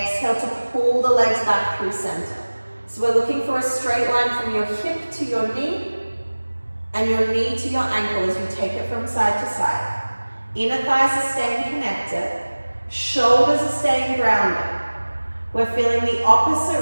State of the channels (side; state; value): both; inverted; correlation -1.00